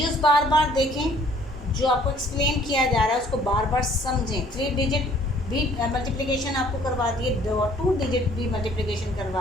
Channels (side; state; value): both; normal; correlation 0.58